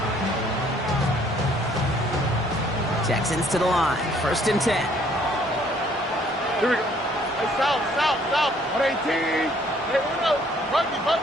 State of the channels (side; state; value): both; normal; correlation 0.62